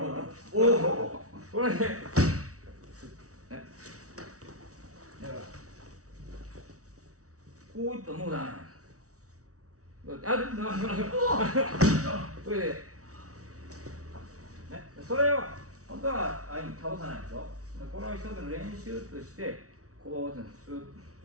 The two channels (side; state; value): left; late; 0.65 ms